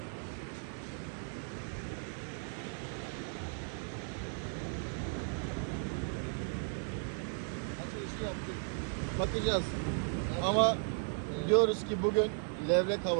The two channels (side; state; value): left; silent; 54 dB below the other